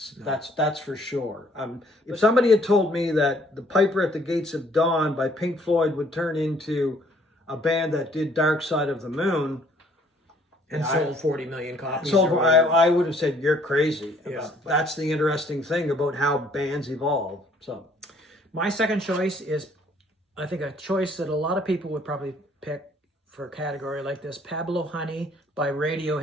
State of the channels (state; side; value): normal; both; correlation 0.61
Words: No. That's for sure. If somebody had told me that The Piper at the Gates of Dawn by Pink Floyd would turn into a band that did Dark Side of the Moon, and sold 40 million copies. I would have said, you're crazy. Yeah, that's the interesting thing about how bands evolve. So, my second choice is, I think, a choice that a lot of people would probably pick for a category like this. Pablo Honey by